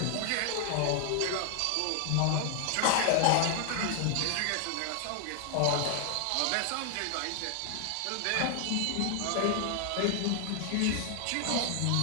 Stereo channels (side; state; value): both; different; correlation 0.00